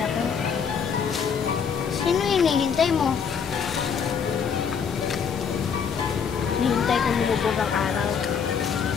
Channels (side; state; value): right; quieter; 6.8 dB